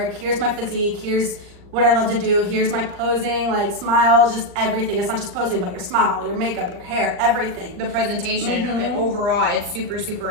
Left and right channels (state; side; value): late; left; 39 ms